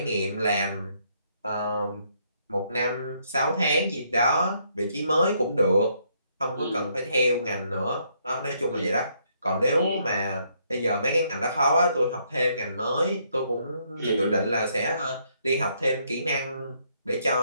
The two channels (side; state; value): both; inverted; correlation -0.72